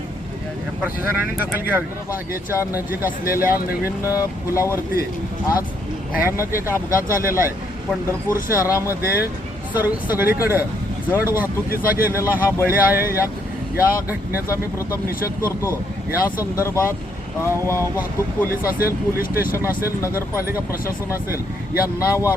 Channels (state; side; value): normal; both; correlation 0.72